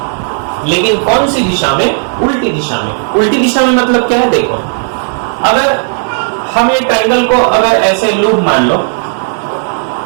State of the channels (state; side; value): silent; left; 63 dB below the other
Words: लेकिन कौन सी दिशा में? उल्टी दिशा में। उल्टी दिशा में मतलब क्या है? देखो, अगर हम ये ट्रायंगल को अगर ऐसे लूप मान लो,